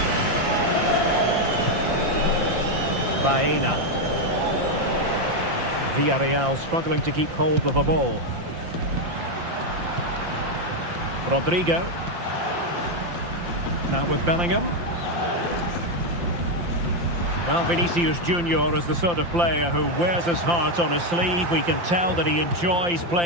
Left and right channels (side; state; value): left; late; 5.8 ms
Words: Baena. Villarreal struggling to keep hold of the ball. Rodrigo. Now with Bellingham. Well, Vinicius Junior is the sort of player who wears his heart on his sleeve. We can tell that he enjoys